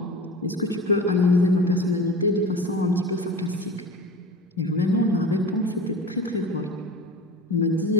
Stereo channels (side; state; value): both; normal; correlation 0.34